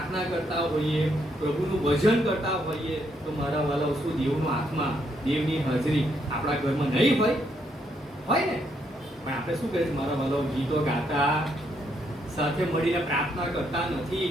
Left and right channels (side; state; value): both; normal; correlation 0.75